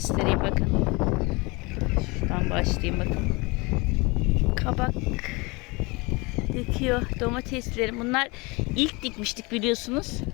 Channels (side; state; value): right; quieter; 26.0 dB